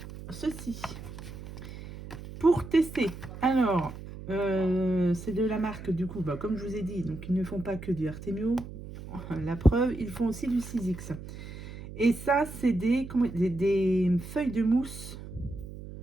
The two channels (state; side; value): noise; right; hum, 12 dB below the sound